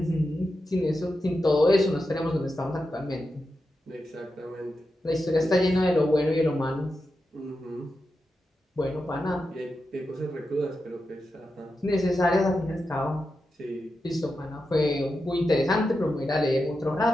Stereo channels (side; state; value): both; normal; correlation 0.89